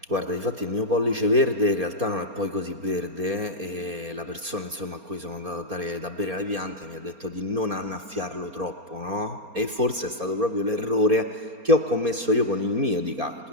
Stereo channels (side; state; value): left; late; 4.3 ms